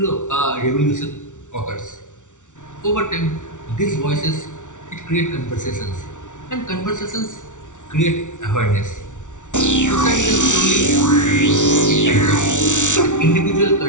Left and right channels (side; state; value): right; late; 0.86 ms